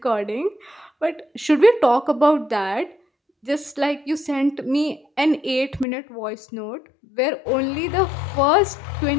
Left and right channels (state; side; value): drops out; right; at 5.9 s